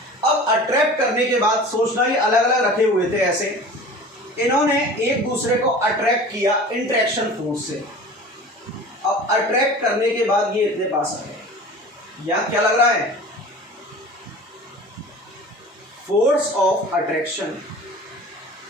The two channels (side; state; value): both; normal; correlation 0.39